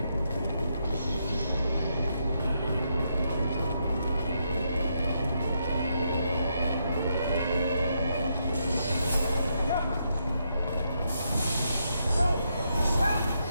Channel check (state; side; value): inverted; both; correlation -0.80